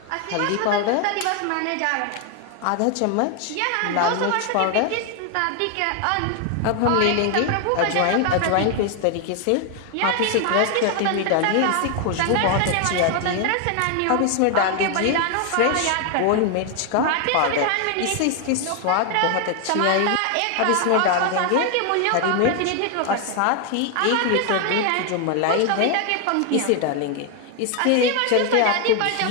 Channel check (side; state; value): both; different; correlation 0.00